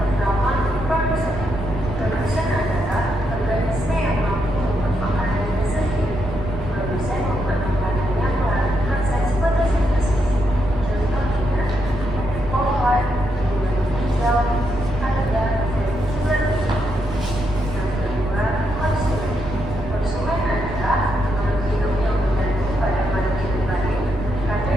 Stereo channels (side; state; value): right; noise; rumble, 8 dB below the sound